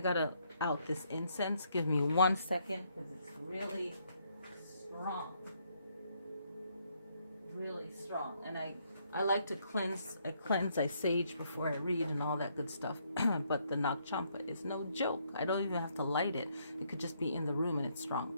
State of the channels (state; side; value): inverted; both; correlation -0.72